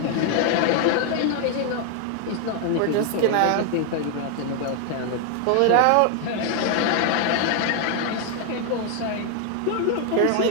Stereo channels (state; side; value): different; both; correlation 0.00